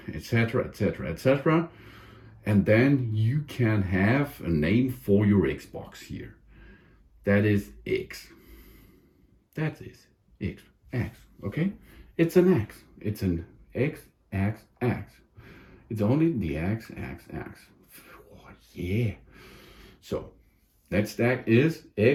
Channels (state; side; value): identical; both; correlation 1.00